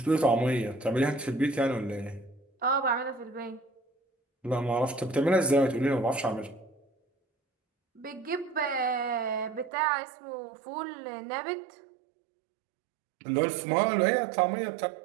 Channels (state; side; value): drops out; left; at 9.7 s